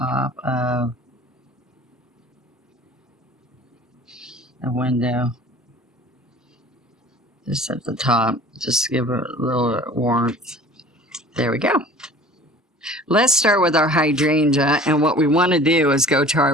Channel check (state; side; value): normal; both; correlation 0.46